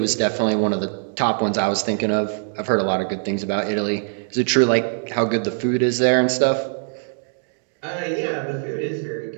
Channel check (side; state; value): left; silent; 64 dB below the other